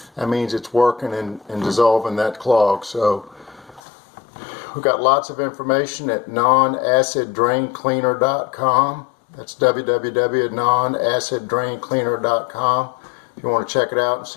That means it's working and dissolving that clog. So we've got lots of information at nonaciddraincleaner.com. That's www.nonaciddraincleaner.com. If you want to check it out and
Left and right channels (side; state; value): right; drops out; at 3.8 s